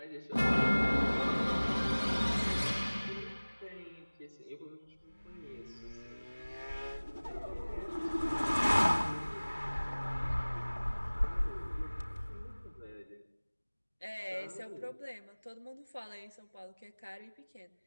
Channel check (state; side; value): inverted; both; correlation -1.00